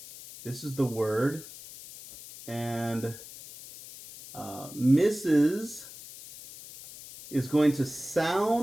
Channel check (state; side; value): noise; left; hiss, 15 dB below the sound